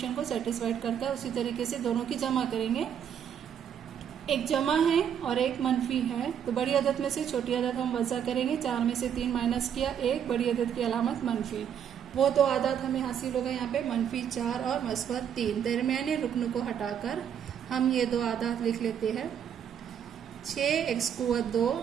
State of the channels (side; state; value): left; quieter; 8.7 dB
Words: को सेटिस्फाइड करता है। उसी तरीके से दोनों की जमा करेंगे, एक जमा है और एक मनफी है, तो बड़ी अदद में से छोटी अदद हम वज़ा करेंगे। 4 में से 3 माइनस किया, 1 बड़ी अदद की अलामत मनफी। वो दो आदात हमें हासिल होगा यहाँ पे -4 और मस्बत 3। दरमियाने रुकन को हटाकर हम ये दो आदात लिख लेते हैं 6x कुव्वत 2